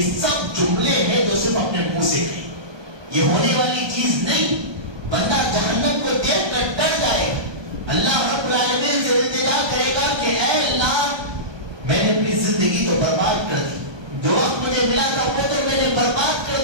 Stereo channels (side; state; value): left; late; 1.2 ms